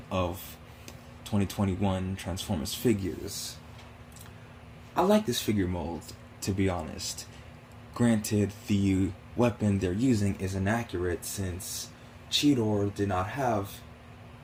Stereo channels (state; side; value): identical; both; correlation 1.00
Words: of 2021 Transformers figures. I like this figure mold, to be honest. Granted, the weapon they're using is inaccurate since Cheetor did not have